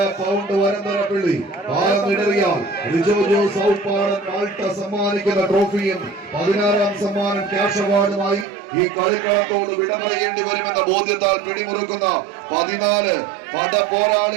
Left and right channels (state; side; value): drops out; left; at 8.5 s